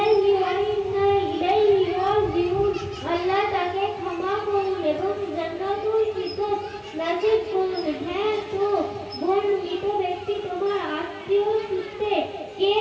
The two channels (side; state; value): both; identical; correlation 1.00